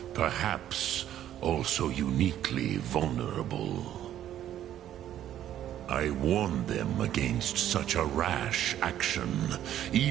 Perhaps also uniquely vulnerable. I warned them against such a rash action.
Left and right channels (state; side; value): quieter; left; 11.5 dB